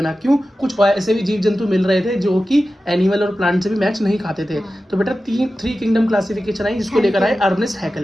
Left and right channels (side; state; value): both; normal; correlation 0.94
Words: क्यों? कुछ ऐसे भी जीव जंतु मिल रहे थे जो कि एनिमल और प्लांट से भी मैच नहीं खाते थे। तो बेटा थ्री किंगडम क्लासिफिकेशन आई, जिसको लेकर आए अर्नेस्ट